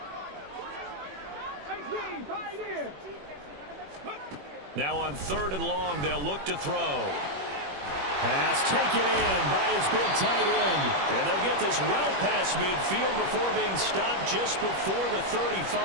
Now on 3rd and long, they'll look to throw. Pass taken in by his big tight end. And they'll get this well past midfield before being stopped just before the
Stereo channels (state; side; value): late; left; 21 ms